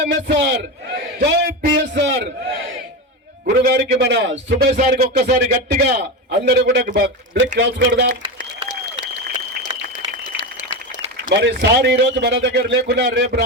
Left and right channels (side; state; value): both; normal; correlation 0.19